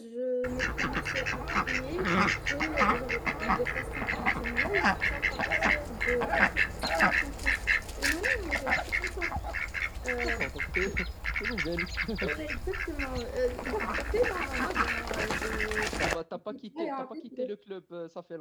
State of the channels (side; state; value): both; identical; correlation 1.00